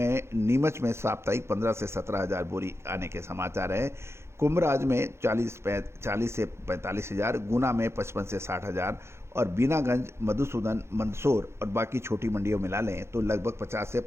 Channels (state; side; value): late; left; 0.13 ms